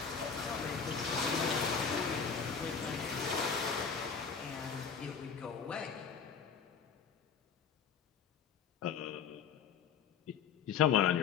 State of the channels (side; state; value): right; quieter; 6.7 dB